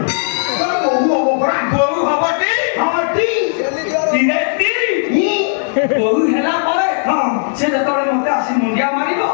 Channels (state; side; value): silent; right; digital silence